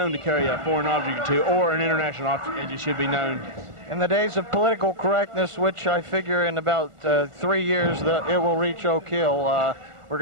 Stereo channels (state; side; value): late; left; 1.4 ms